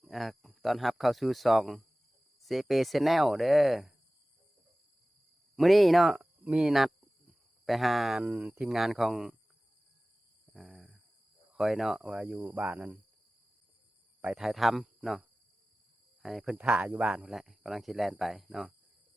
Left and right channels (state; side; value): normal; both; correlation 0.97